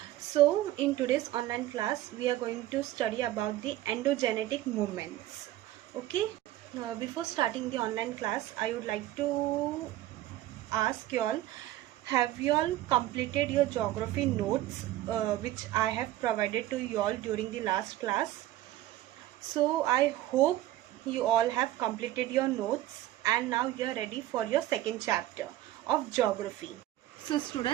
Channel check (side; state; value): left; quieter; 14.8 dB